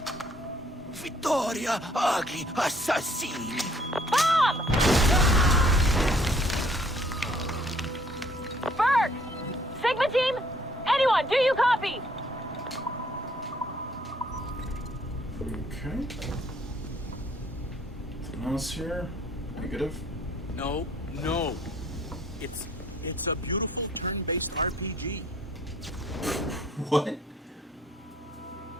Vittoria agli assassini. Bomb! Berg! Sigma team? Anyone, do you copy? Okay. Something else here? Negative. No. It's a beautiful turn-based RPG. What?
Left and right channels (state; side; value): normal; both; correlation 0.61